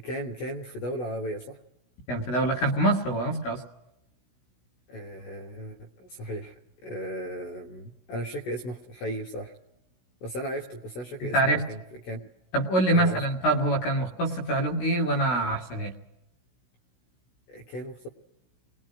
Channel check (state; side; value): late; right; 16 ms